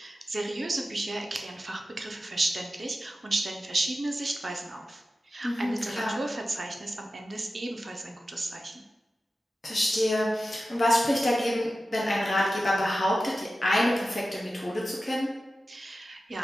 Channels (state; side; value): normal; both; correlation 0.94